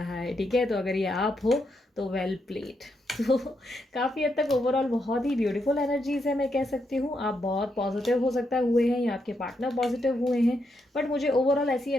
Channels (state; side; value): normal; both; correlation 0.81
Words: है, ठीक है। तो अगर ये आप हो तो वेल प्लेड। तो काफ़ी हद तक ओवरऑल बहुत ही ब्यूटीफुल एनर्जीज है, मैं कह सकती हूँ। आप बहुत पॉजिटिव हो सकता है हुए हैं या आपके पार्टनर पॉजिटिव हुए हैं, बट मुझे ओवरऑल ऐसी